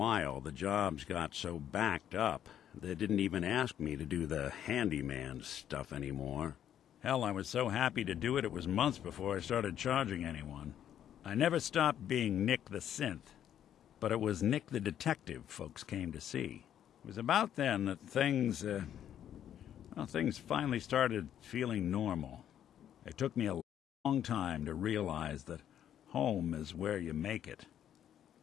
the jobs got so backed up, they didn't even ask me to do the handyman stuff anymore. Hell, I was so happy to do it, it was months before I started charging anyone. I never stopped being Nick the synth, but it was Nick the detective folks came to see. It was about then that things finally started feeling normal. It took me a long time to realize that home is where you make it.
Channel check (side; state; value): right; quieter; 10.2 dB